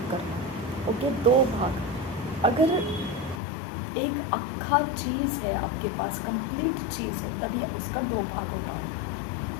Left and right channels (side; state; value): right; drops out; at 3.4 s